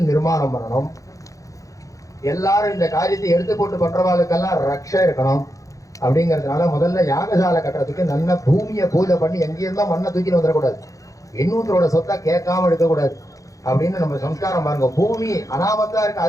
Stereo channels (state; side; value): late; right; 0.16 ms